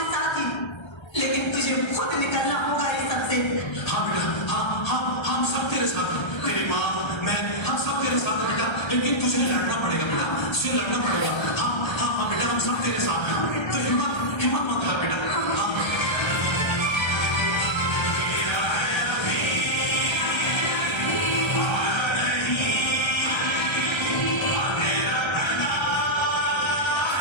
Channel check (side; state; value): right; late; 1.3 ms